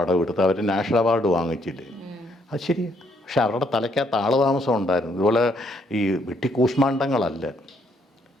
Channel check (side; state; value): both; normal; correlation 0.71